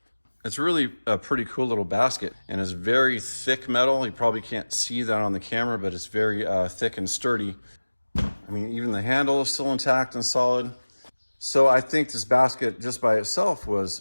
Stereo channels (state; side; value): inverted; both; correlation -1.00